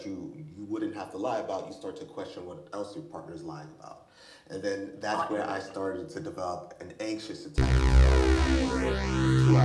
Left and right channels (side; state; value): both; identical; correlation 1.00